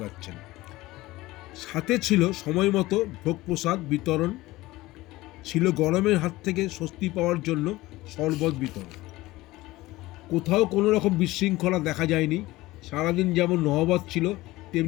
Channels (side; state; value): right; quieter; 18.7 dB